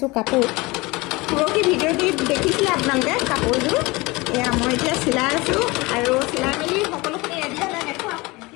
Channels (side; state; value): right; quieter; 23.4 dB